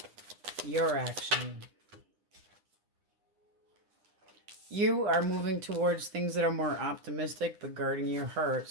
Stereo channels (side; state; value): left; late; 9.8 ms